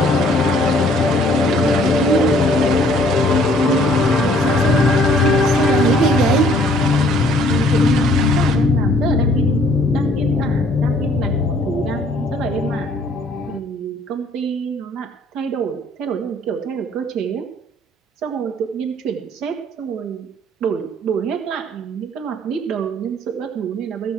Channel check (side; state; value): both; normal; correlation 0.60